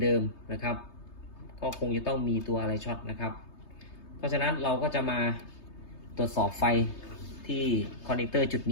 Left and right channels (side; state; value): right; late; 3.3 ms